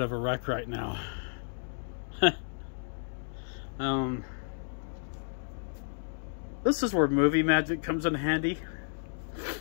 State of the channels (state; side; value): silent; right; digital silence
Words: of a wreck right now. This is where movie magic comes in handy.